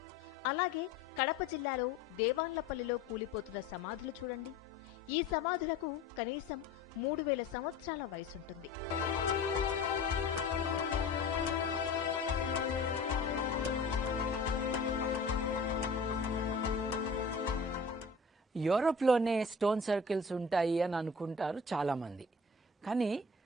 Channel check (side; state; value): right; quieter; 3.4 dB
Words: అలాగే కడప జిల్లాలో దేవాన్లపల్లిలో కూలిపోతున్న సమాధులు చూడండి. ఈ సమాధులకు కనీసం 3000 సంవత్సరాల వయసుంటుంది. యూరోప్లోనే స్టోన్ సర్కిల్స్ ఉంటాయి అని అనుకుంటారు చాలామంది. కానీ